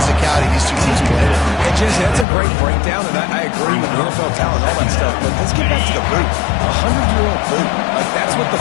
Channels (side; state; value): right; drops out; at 2.2 s